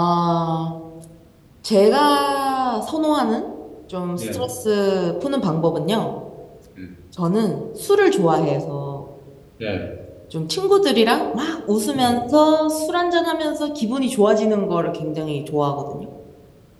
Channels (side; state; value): both; identical; correlation 1.00